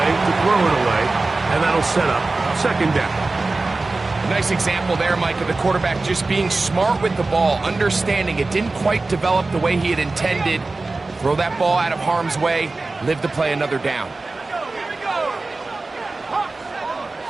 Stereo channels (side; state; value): left; quieter; 3.4 dB